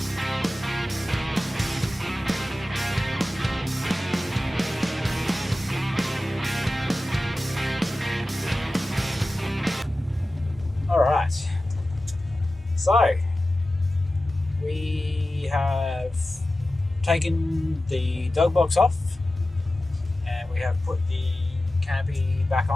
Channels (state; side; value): normal; both; correlation 0.95